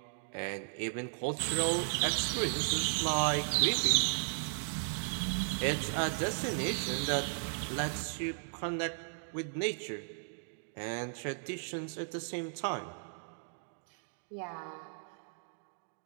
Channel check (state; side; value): silent; left; digital silence